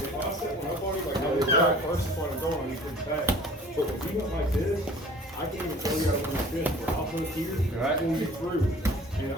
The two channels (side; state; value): both; normal; correlation 0.48